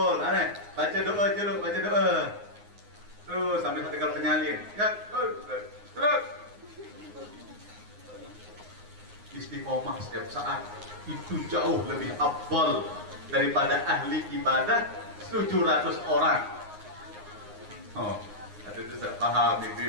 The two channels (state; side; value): late; left; 9.6 ms